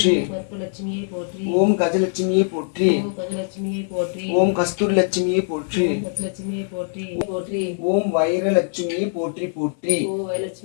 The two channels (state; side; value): silent; right; 57 dB below the other